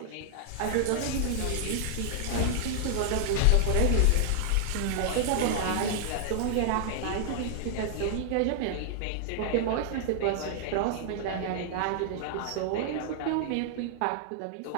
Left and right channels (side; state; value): both; different; correlation -0.01